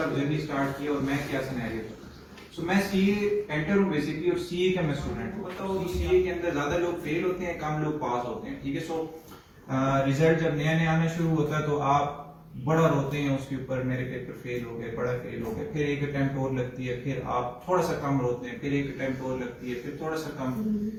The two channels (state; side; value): identical; both; correlation 1.00